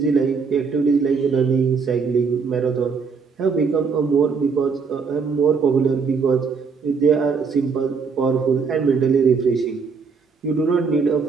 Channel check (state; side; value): quieter; left; 5.3 dB